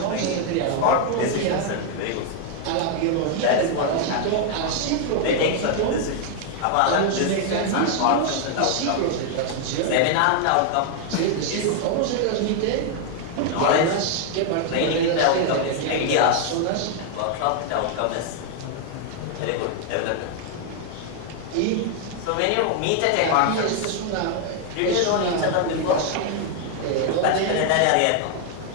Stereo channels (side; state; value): both; different; correlation 0.00